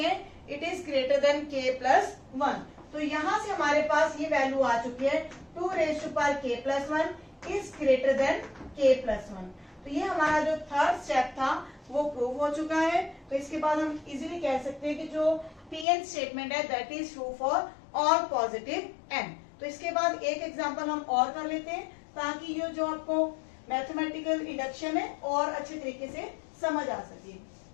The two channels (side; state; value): right; drops out; at 15.9 s